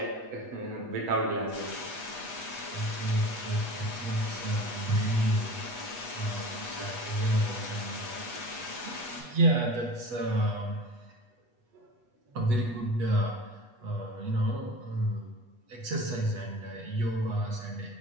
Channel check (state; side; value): late; left; 8.2 ms